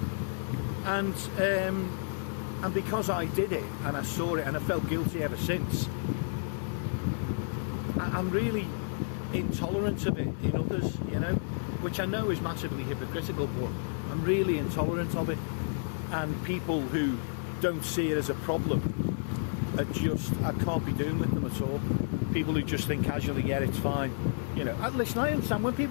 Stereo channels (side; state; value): right; silent; digital silence